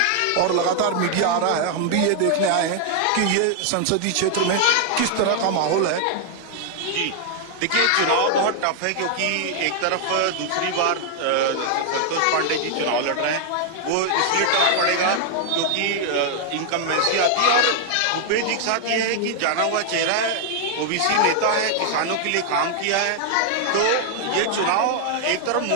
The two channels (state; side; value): different; both; correlation 0.00